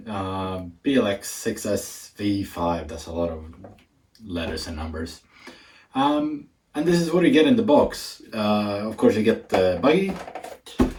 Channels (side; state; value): both; identical; correlation 1.00